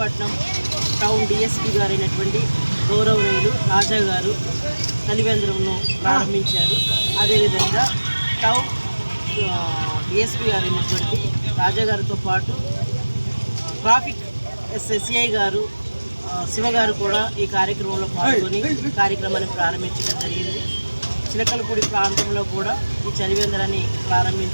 టౌన్ డిఎస్పీ గారైనటువంటి గౌరవనీయులు రాజా గారు చలివేంద్రంను ప్రారంభించారు. అదేవిధంగా టౌన్ డిఎస్పీ గారైనటువంటి రాజా గారితో పాటు ట్రాఫిక్ సిఐ గారు శివగారు కూడా ఈ కార్యక్రమంలో పాల్గొని కార్యక్రమాన్ని ప్రారంభించడం జరిగింది. చిలకలపూడి ప్రాంతంలో కూడా ఈ చలివేంద్రాన్ని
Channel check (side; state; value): both; inverted; correlation -1.00